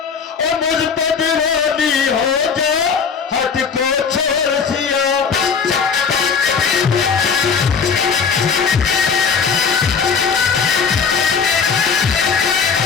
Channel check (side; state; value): right; quieter; 6.0 dB